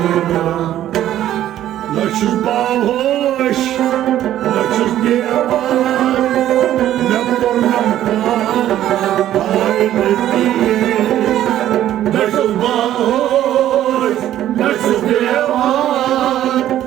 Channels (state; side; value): quieter; left; 12.4 dB